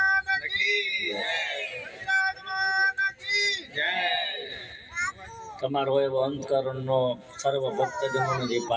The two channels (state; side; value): identical; both; correlation 1.00